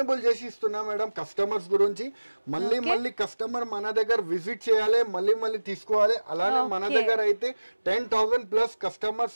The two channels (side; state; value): both; inverted; correlation -1.00